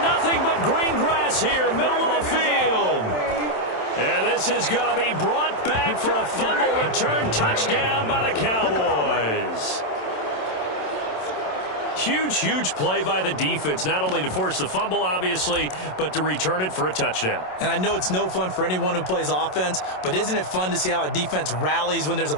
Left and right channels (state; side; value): late; right; 27 ms